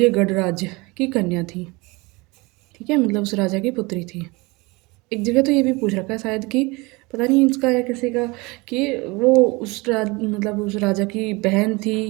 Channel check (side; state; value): left; quieter; 24.9 dB